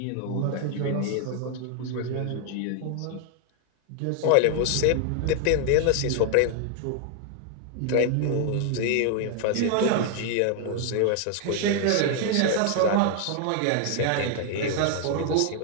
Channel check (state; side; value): different; both; correlation 0.00